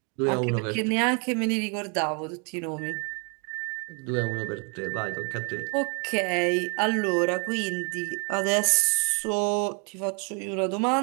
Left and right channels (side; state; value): left; quieter; 35.9 dB